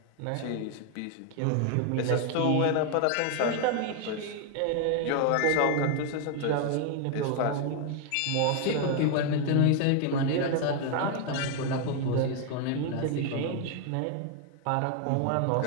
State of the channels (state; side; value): different; both; correlation 0.01